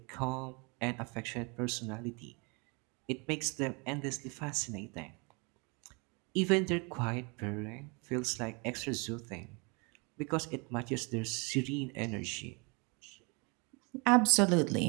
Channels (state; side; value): quieter; left; 31.2 dB